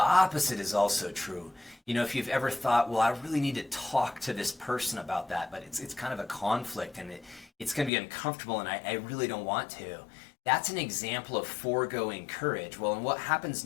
opposite is also true. You know, if you've ever thought, well, I really need to talk to this person about that, but it's kind of a conflict and it's going to be uncomfortable and I really don't want to. That's an example of foregoing courage. Well, and what happens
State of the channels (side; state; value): right; drops out; at 7.9 s